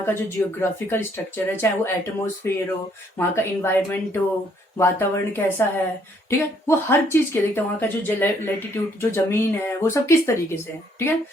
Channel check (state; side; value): normal; both; correlation 0.67